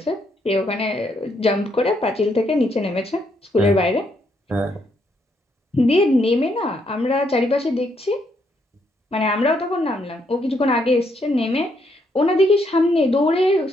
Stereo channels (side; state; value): both; normal; correlation 0.74